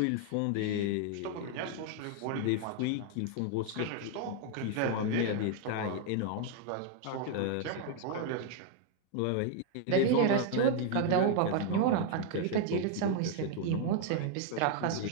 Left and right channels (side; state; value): both; different; correlation 0.00